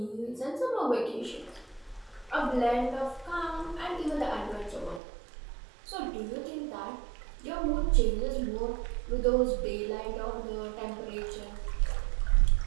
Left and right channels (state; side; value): drops out; left; at 5.0 s